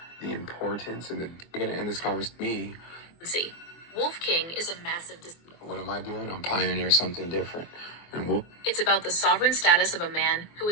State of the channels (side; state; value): right; late; 24 ms